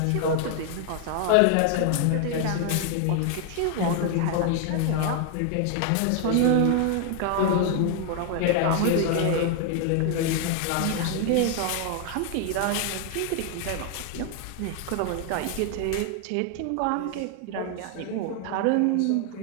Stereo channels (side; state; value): both; different; correlation 0.00